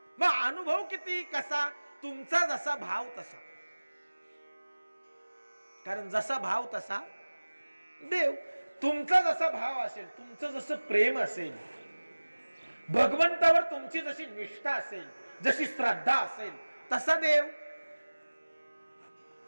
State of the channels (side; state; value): both; inverted; correlation -1.00